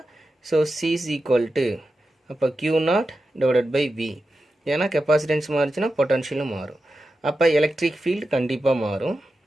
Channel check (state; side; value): normal; both; correlation 0.91